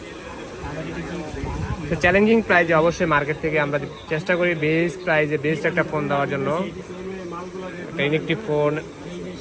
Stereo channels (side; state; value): both; identical; correlation 1.00